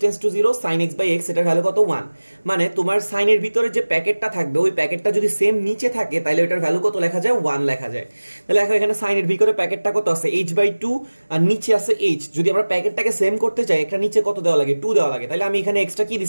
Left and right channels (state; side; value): inverted; both; correlation -1.00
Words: to 0 sin x by x, এটার ভ্যালু কত 1। মানে তোমার সাইনের ভিতরে যে প্যাকেটটা থাকবে ওই প্যাকেটটা যদি সেম নিচে থাকে তাহলে ওটার ভ্যালু কত লেখা যায়, 1 লেখা যায়। তাহলে দেখো এখানে সাইনের ভিতরে প্যাকেটটা কত আছে, h বাই 2, আর নিচে আছে h। যদি আমরা প্যাকেটটাকে সেম করতে চাই একটা নিচে কত দেওয়া লাগে, 2 দেওয়া লাগে। তাহলে আমি এখানে এক্সট্রা কি